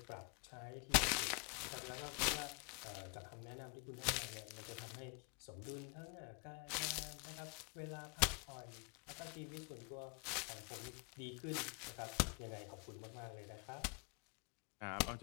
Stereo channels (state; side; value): quieter; right; 34.3 dB